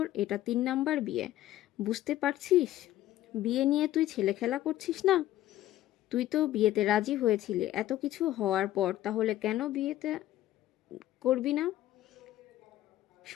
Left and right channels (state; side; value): quieter; right; 14.1 dB